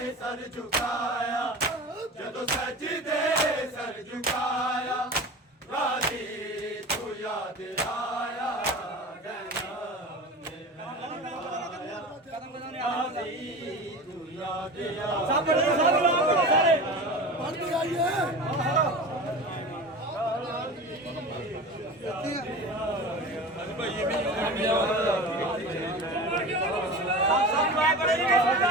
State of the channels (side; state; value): both; normal; correlation 0.32